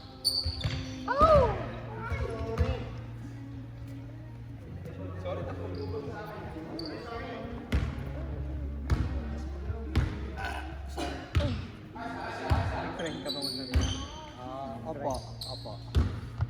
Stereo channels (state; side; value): identical; both; correlation 1.00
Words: Friend ka ba mag-nari? Opo.